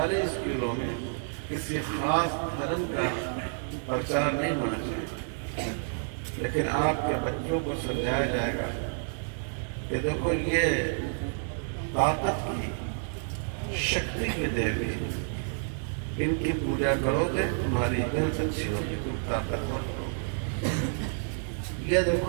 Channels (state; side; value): silent; left; 58 dB below the other